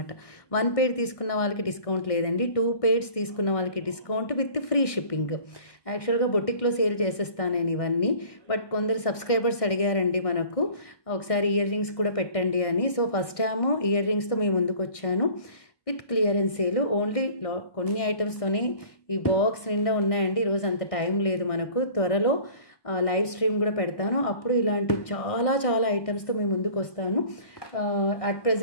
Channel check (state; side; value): late; right; 1.6 ms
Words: 1 pair తీసుకున్న వాళ్ళకి డిస్కౌంట్ లేదండి. 2 pairs తీసుకున్న వాళ్ళకి డిస్కౌంట్ విత్ ఫ్రీ షిప్పింగ్. యాక్చువల్గా బొటిక్లో సేల్ చేసేస్తాను నేను ఇవన్నీ. బట్ కొందరు సబ్స్క్రైబర్స్ అడిగారండి మనకు ఒకసారి ఇయర్ రింగ్స్ కూడా పెట్టండి అని. సో ఫస్ట్ టైము ఇయర్ రింగ్స్తో మేము ముందుకు వచ్చాను విత్ క్లియరెన్స్ సేల్. ఓన్లీ కొన్ని ఐటమ్స్తోనే ఈ బాక్స్ నిండా ఉన్నాయండి. ఈరోజు అంత టైం లేదు మనకు. త్వరలో లైవ్ స్ట్రీమ్ కూడా పెడతాను. అప్పుడు ఇలాంటి చాలా చాలా ఐటమ్స్తో మేము ముందుకు వస్తాను. అట్